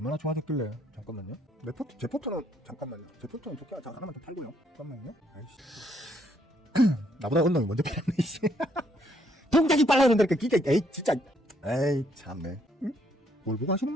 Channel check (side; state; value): both; normal; correlation 0.70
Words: 좋아졌길래. 잠깐만요. 제 포트는 잠깐만요. 제 포트는 좋게 하나만 더 팔고요. 잠깐만요. 아이씨. 나보다 언놈이 먼저 팔았네, 이씨. 동작이 빨라 그런다니까, 진짜. 에이, 참네. 응? 뭘 보고 하시는